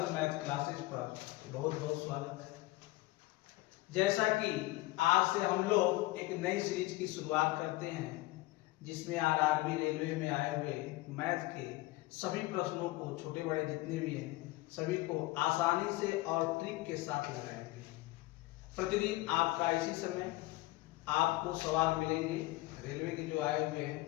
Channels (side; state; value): right; quieter; 19.2 dB